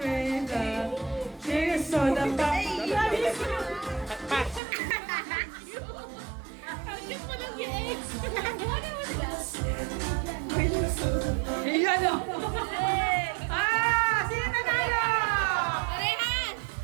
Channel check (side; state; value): left; drops out; at 4.6 s